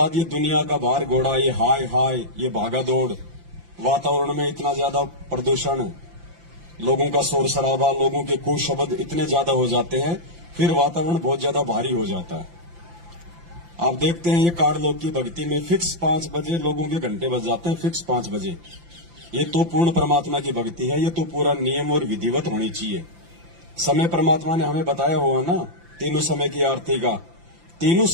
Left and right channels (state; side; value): late; left; 5.8 ms